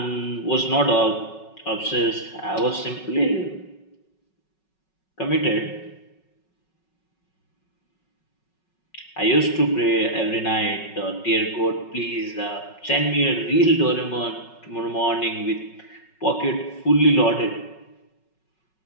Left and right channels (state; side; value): late; right; 5.4 ms